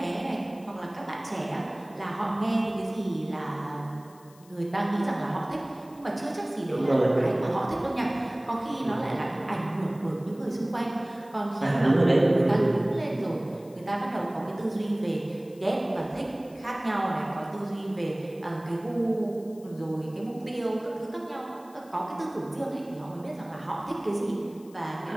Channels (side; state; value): left; noise; hiss, 26 dB below the sound